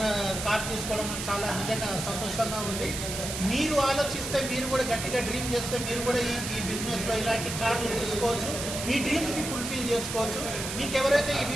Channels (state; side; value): noise; right; hiss, 5 dB below the sound